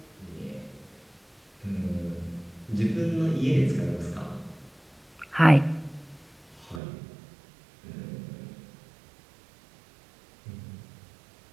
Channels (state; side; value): drops out; left; at 6.8 s